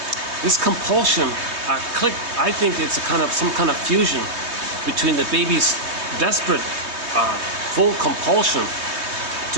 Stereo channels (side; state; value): left; late; 3.2 ms